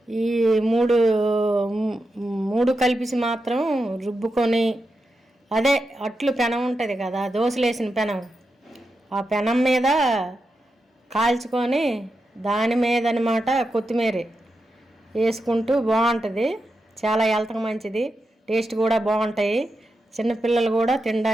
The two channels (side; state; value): both; normal; correlation 0.88